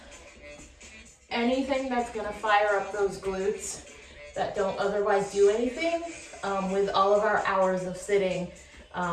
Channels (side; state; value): both; identical; correlation 1.00